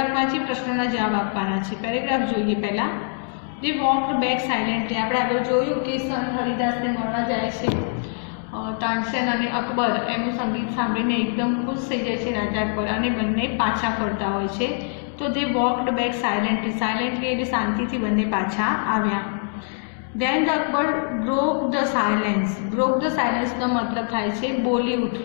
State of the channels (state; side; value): silent; right; 60 dB below the other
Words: જે પ્રશ્નોના જવાબ આપવાના છે। પેરેગ્રાફ જોઈએ પહેલા। દે વોકડ બેક સાયલેન્ટલી। આપણે આગળ જોયું કે સંત હરિદાસને મળવા જાય છે તાનસેન અને અકબર એમનું સંગીત સાંભળીને એકદમ ખુશ થઈ જાય છે રાજા અકબર અને બંને પાછા ફરતા હોય છે। તો દે વોકડ બેક સાયલેન્ટલી એટલે શાંતિથી બંને પાછા આવ્યા। Then the Akbar broke the silence. Broke the સાયલેન્સનો મતલબ થાય છે બોલી